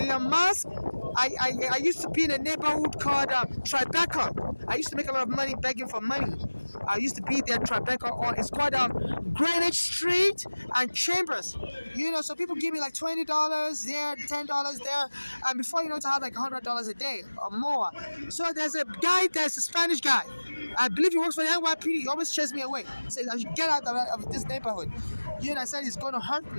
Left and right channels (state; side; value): inverted; both; correlation -1.00